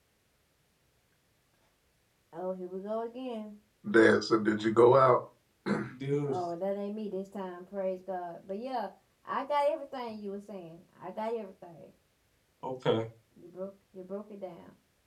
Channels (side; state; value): both; identical; correlation 1.00